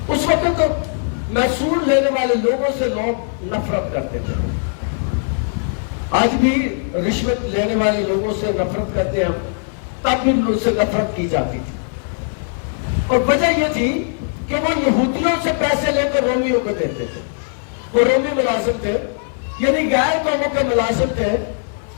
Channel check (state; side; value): silent; right; 66 dB below the other